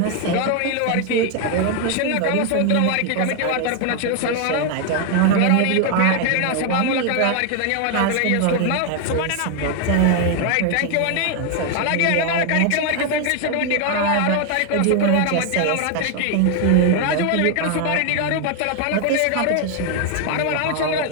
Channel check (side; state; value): both; different; correlation 0.01